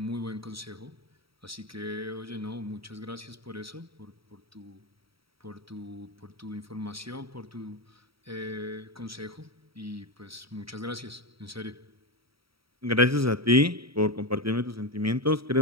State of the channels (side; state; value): left; late; 0.75 ms